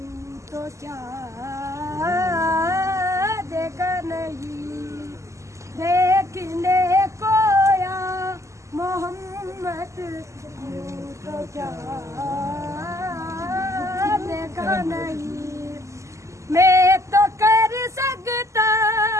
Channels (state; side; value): late; left; 0.15 ms